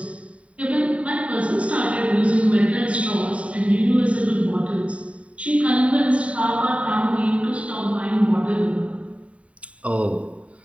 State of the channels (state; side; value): late; left; 0.065 ms